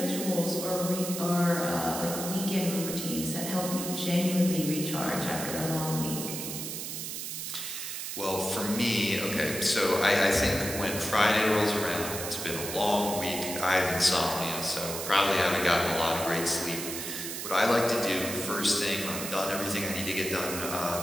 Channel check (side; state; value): right; noise; hiss, 6 dB below the sound